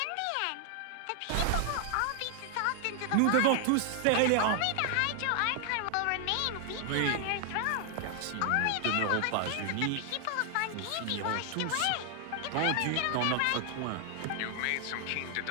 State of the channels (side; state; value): both; different; correlation 0.00